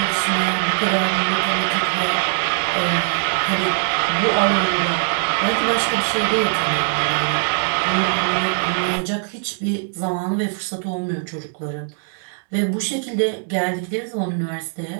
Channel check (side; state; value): left; silent; digital silence